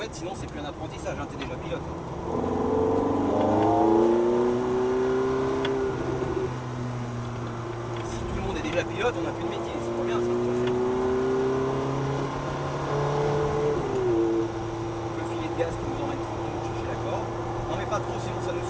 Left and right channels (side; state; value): both; identical; correlation 1.00